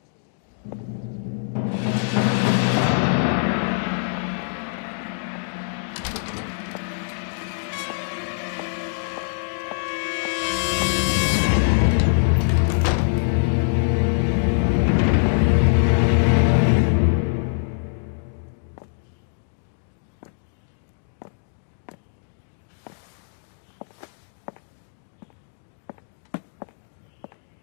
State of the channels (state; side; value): silent; right; digital silence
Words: 他们都跟你说了？果然挺有本事，戒备这么森严都能进